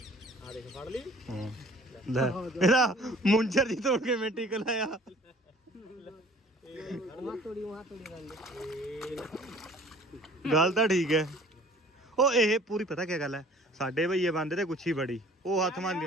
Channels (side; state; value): both; normal; correlation 0.51